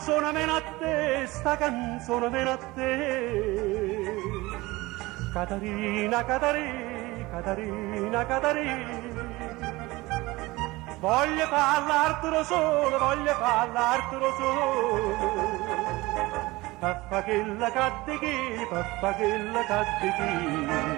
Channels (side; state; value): left; quieter; 20.9 dB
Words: viene a te, sta canzone viene a te. Catarina, Catarina, Catarina, Catarina. Voglio parlartelo solo, voglio parlartelo solo. Papà che la cadde papà che la